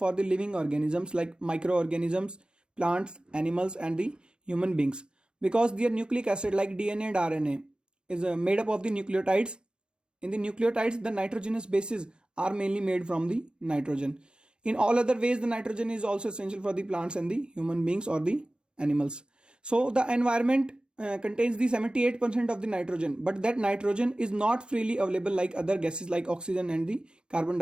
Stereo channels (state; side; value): late; left; 0.050 ms